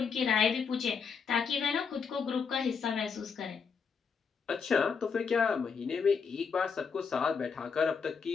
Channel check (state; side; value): quieter; right; 5.9 dB